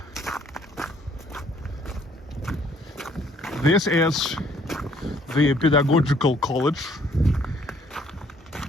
This is the pedagogical college.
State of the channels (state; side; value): normal; both; correlation 0.63